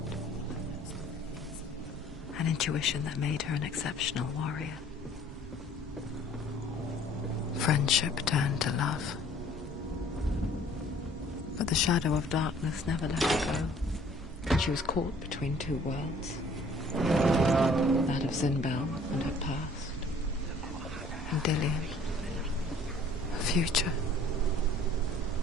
An intuition that made her an exceptional warrior. Friendship turned to love. But the shadow of darkness never let her go. And she was caught between two worlds. That of Zinbel and her past. And Dillion. Her future.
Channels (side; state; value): right; noise; hum, 17 dB below the sound